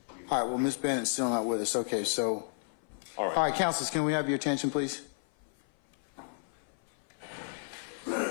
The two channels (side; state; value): right; silent; 56 dB below the other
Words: All right, well, Ms. Bennett's still not with us. Okay, so, All all right, counsels, can we have your attention, please?